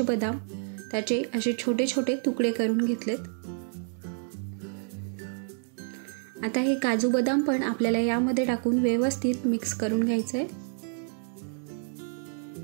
बदाम त्याचे असे छोटे छोटे तुकडे करून घेतलेत. आता हे काजू बदाम पण आपल्याला यामध्ये टाकून व्यवस्थित मिक्स करून घ्यायचं आहे.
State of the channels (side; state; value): left; silent; 59 dB below the other